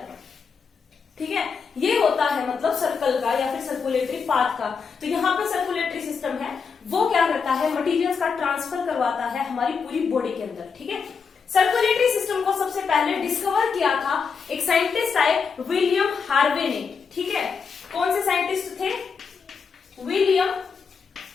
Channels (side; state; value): right; quieter; 5.7 dB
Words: हैं, ठीक है। ये होता है मतलब सर्कल का या फिर सर्कुलेटरी पाथ का। तो यहाँ पे सर्कुलेटरी सिस्टम है वो क्या करता है, मटेरियल्स का ट्रांसफर करवाता है हमारी पूरी बॉडी के अंदर, ठीक है। सर्कुलेटरी सिस्टम को सबसे पहले डिस्कवर किया था एक साइंटिस्ट आए, विलियम हार्वे ने, ठीक है। कौन से साइंटिस्ट थे, विलियम